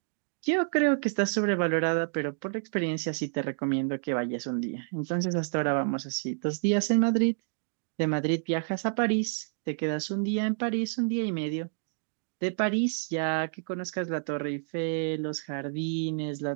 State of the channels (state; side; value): silent; left; digital silence